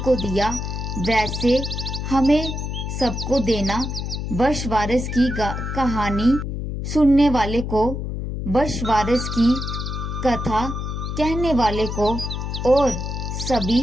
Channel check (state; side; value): noise; left; hum, 4 dB below the sound